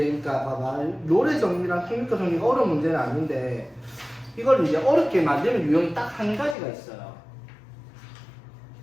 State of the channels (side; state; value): right; drops out; at 6.6 s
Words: 그러니까 봐봐 노래 정리랑 평균가 정리가 어려운 문제는 아닌데 이걸 이제 어렵게 만드는 유형이 딱 한 가지가 있어요.